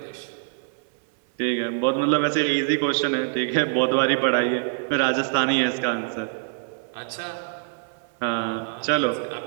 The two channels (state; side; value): silent; left; 62 dB below the other